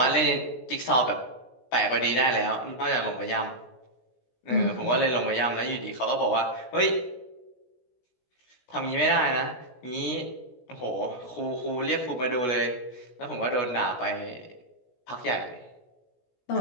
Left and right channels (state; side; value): late; right; 16 ms